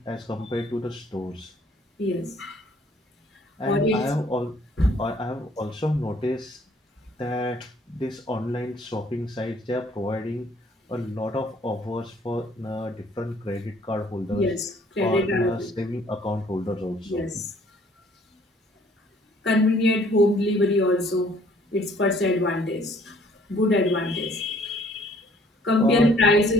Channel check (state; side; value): normal; both; correlation 0.60